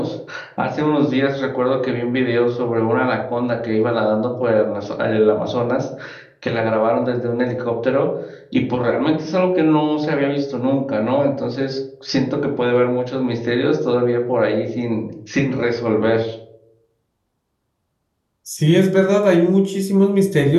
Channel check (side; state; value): both; identical; correlation 1.00